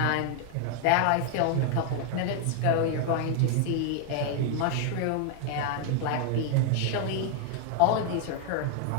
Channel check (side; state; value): both; different; correlation 0.00